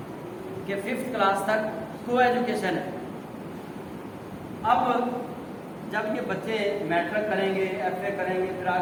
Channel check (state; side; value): identical; both; correlation 1.00